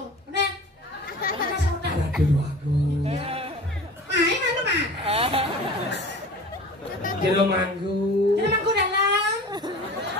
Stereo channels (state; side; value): normal; both; correlation 0.39